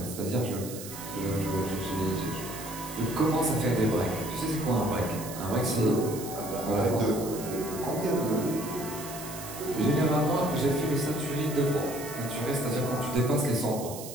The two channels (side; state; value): right; noise; hiss, 11 dB below the sound